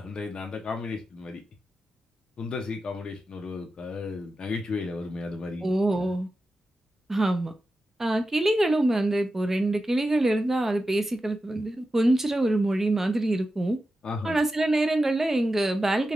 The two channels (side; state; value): both; normal; correlation 0.92